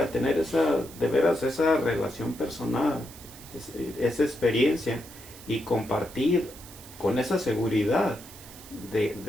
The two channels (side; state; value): right; noise; hiss, 18 dB below the sound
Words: tener de veras esa relación personal, esa experiencia, y compartir con esa seguridad